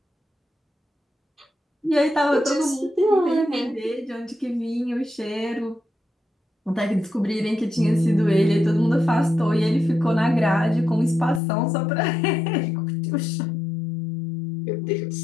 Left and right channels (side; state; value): right; drops out; at 11.4 s